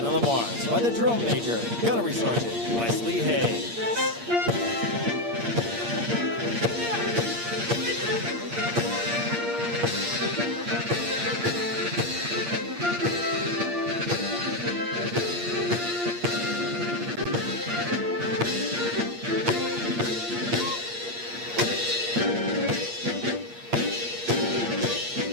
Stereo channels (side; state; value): left; late; 8.6 ms